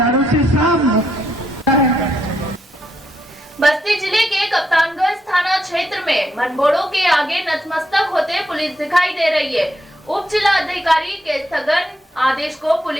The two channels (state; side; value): normal; both; correlation 0.78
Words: से, सब बस्ती जिले के कप्तानगंज थाना क्षेत्र में मनबोड़ो के आगे नतमस्तक होते पुलिस दिखाई दे रही है। उप जिला अधिकारी के स्थगन आदेश को